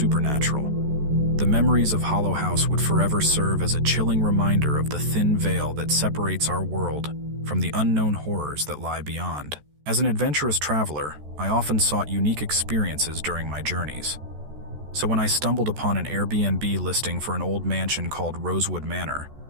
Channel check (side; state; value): left; late; 14 ms